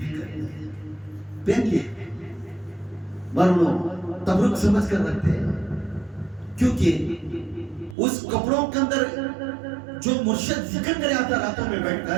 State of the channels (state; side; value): drops out; left; at 8.0 s